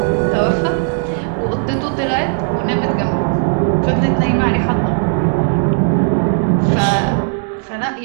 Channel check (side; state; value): left; silent; 61 dB below the other